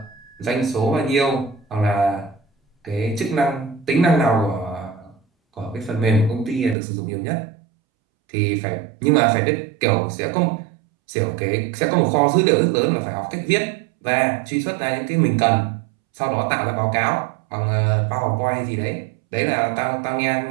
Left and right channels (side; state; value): left; drops out; at 6.8 s